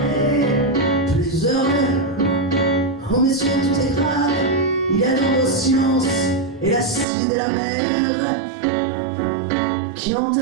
plus heureux. Oh messieurs, tout est grave, il y a dans vos sciences et l'acide et la mer qui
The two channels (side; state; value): left; drops out; at 7.1 s